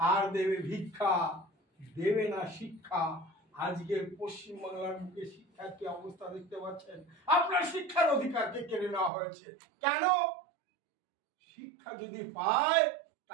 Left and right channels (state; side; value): drops out; left; at 9.1 s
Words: দেবে ভিক্ষা, দেবে না শিক্ষা। আজকে পশ্চিমবাংলার বুকে শিক্ষার কি অবস্থা দেখতে পাচ্ছেন। আপনার শিক্ষার অধিকারকে কেড়ে নেওয়া হয়েছে। কেন? শিক্ষা যদি পায়